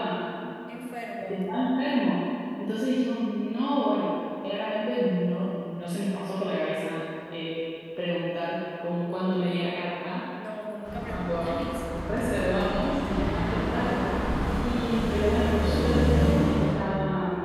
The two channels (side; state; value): both; identical; correlation 1.00